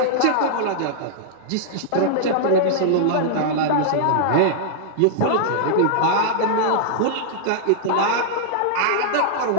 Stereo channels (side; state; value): both; different; correlation -0.01